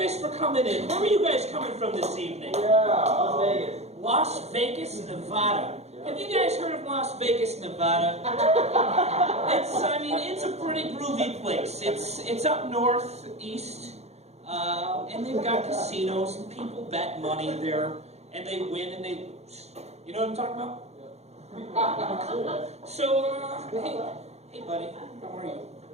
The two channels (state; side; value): late; left; 0.31 ms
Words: for coming in. Where are you guys coming from this evening? Las Vegas. Las Vegas, Nevada. Have you guys heard of Las Vegas, Nevada? It's a pretty groovy place. It's up northeast, and they've got casinos, and people bet money there, and they win and they lose. You know what I'm talking about? Yeah. Cool. So, hey buddy, how are you?